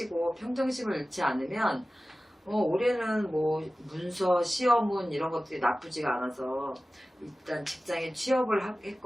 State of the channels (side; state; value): both; normal; correlation 0.96